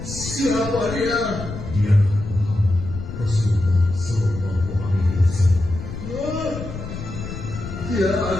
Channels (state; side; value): noise; left; rumble, 9 dB below the sound